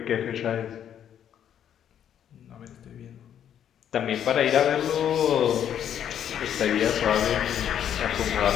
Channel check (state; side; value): quieter; right; 9.6 dB